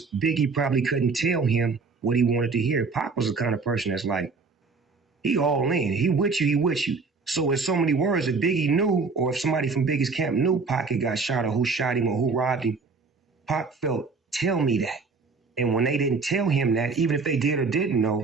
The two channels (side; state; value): left; quieter; 4.4 dB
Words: Biggie probably couldn't tell him what he wanted to hear. Pac was the kind of person that's like, he all in. He with you, he with you. So in so many words, if Biggie knew, or if somebody from Biggie's camp knew Pac had got shot or who shot him or who robbed him, Pac felt, tell me that. And when they didn't tell him that, even if they did or didn't